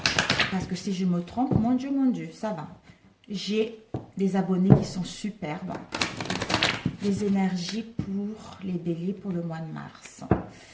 Parce que si je me trompe, mon Dieu, ça va. J'ai des abonnés qui sont superbes. Les énergies pour les béliers pour le mois de mars.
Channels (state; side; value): identical; both; correlation 1.00